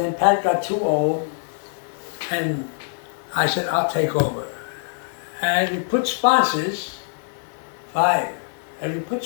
Pat got too old, and I said, I'll take over. And we put sponsors, 5. As we put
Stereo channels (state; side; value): silent; right; digital silence